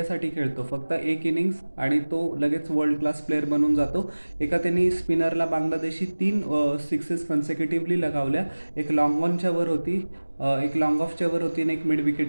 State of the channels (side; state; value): both; inverted; correlation -1.00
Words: खेळतो, फक्त 1 इनिंग्स आणि तो लगेच वर्ल्ड क्लास प्लेअर बनून जातो. त्यांनी स्पिनरला बांगलादेशी 3 सिक्सेस कन्सेक्युटिव्हली लगावल्या. एक लॉंग ऑनच्या वर होती, एक लॉंग ऑफच्या वर होती आणि एक मिड